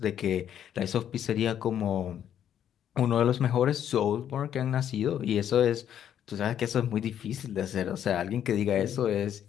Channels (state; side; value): quieter; right; 9.9 dB